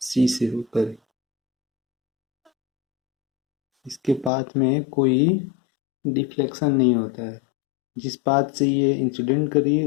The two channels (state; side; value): drops out; right; at 4.3 s